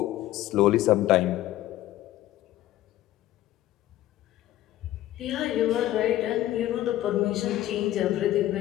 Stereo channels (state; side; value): quieter; right; 14.4 dB